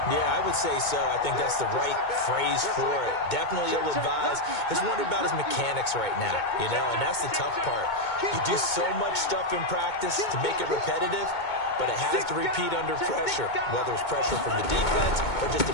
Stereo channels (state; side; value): late; right; 2.2 ms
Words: Yeah, I would say so. I think that's the right phrase for it. Definitely ill-advised. Just wondering about his mechanics right now, you know, and that's the tough part. You do so much stuff in practice to make it repetitive, but it has to repeat under pressure, whether it's pressure from the defense or just